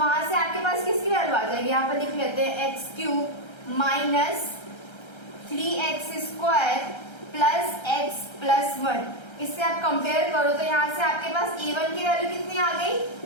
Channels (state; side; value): late; right; 1.3 ms